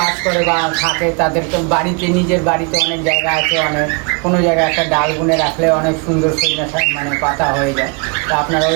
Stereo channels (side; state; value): left; quieter; 33.1 dB